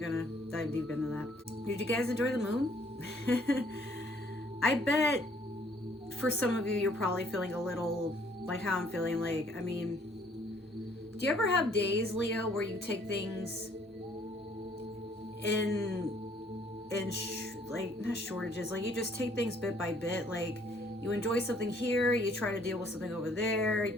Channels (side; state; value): both; normal; correlation 0.62